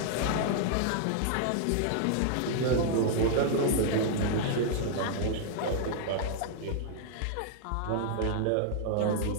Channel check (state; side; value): different; both; correlation -0.01